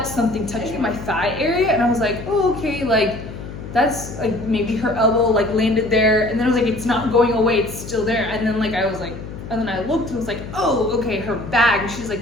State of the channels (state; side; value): noise; left; hum, 11 dB below the sound